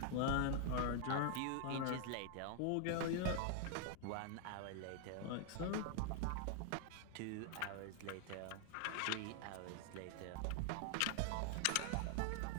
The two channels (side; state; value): both; different; correlation 0.00